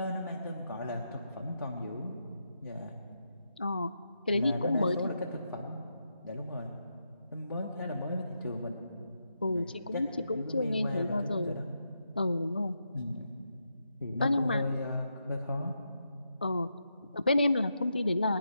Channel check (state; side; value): inverted; both; correlation -0.84